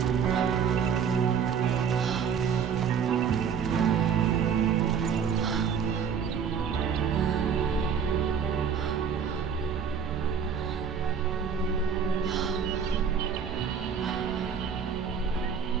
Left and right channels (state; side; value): quieter; left; 7.0 dB